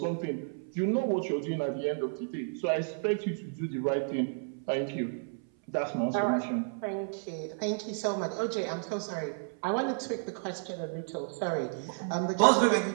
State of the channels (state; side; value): silent; left; 57 dB below the other